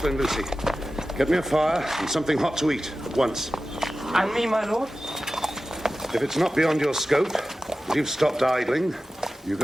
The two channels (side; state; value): both; normal; correlation 0.94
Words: Lucy, get me a fire and something hot to eat at once. And me, my lord? If it's not beyond your scope, and you've stopped idling, you